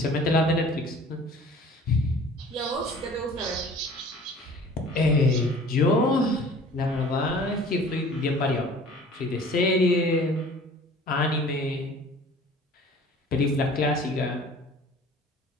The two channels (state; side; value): normal; both; correlation 0.47